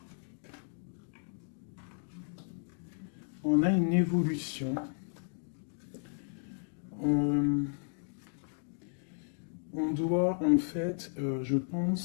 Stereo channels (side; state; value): right; silent; 55 dB below the other